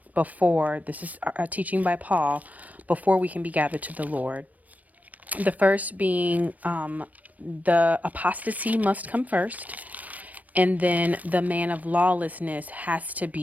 before, this is a teaching by Paul, before we can be gathered to the Lord. The first being the apostasy must come first. And then the man of lawlessness has to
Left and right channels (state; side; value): late; left; 0.074 ms